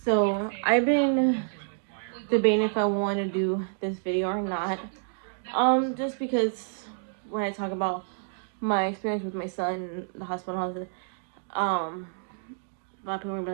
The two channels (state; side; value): silent; left; digital silence